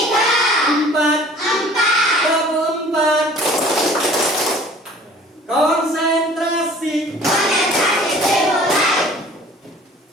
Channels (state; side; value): normal; both; correlation 0.49